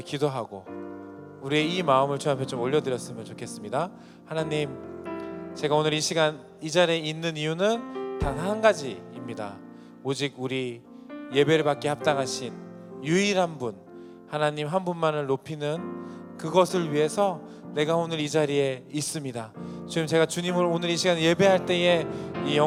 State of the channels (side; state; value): both; identical; correlation 1.00